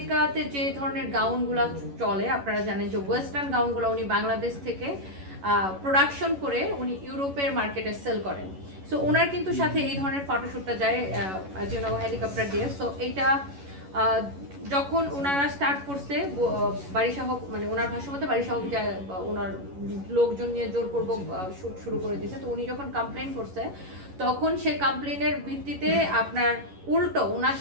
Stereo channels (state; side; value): late; left; 11 ms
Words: যে ধরনের গাউনগুলো চলে আপনারা জানেন যে ওয়েস্টার্ন গাউনগুলো উনি বাংলাদেশ থেকে প্রোডাকশন করে উনি ইউরোপের মার্কেটে সেল করেন। সো ওনার কিন্তু সাথে এই ধরনের ফটোশ্যুটটা যায় হেলিকপ্টার দিয়ে। সো এইটা যখন ওনারা স্টার্ট করছে বারিশা হক, মানে ওনার ভাষ্য মতে বারিশা হক ওনার লোকজন নিয়ে জোরপূর্বক শুট শুরু করে দিয়েছে। তো উনি যখন কমপ্লেন করছে তখন সে কমপ্লেনের ভিত্তিতে আপনার উল্টো ওনার